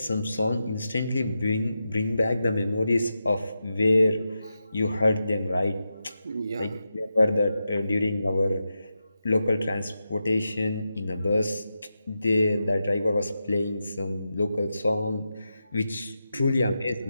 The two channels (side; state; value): both; inverted; correlation -0.89